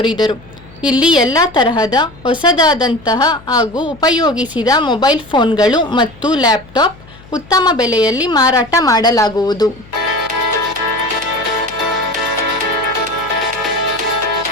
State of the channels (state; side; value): noise; left; hum, 22 dB below the sound